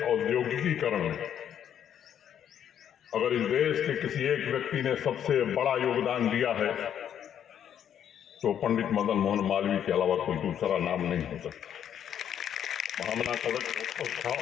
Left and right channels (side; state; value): right; quieter; 9.4 dB